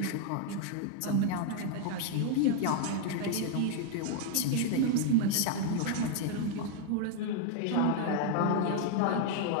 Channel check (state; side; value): different; both; correlation 0.00